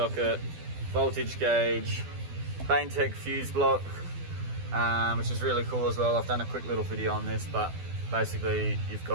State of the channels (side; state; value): left; late; 12 ms